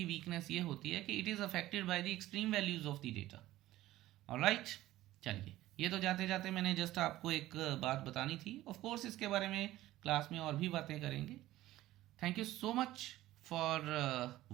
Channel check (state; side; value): quieter; left; 15.7 dB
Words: वीकनेस ये होती है कि it is affected by the extreme values of the data. Alright, चलिए, ये तो जाते जाते मैंने जस्ट आपको एक बात बतानी थी। ऑफ कोर्स इसके बारे में क्लास में और भी बातें करेंगे। Thank you so much for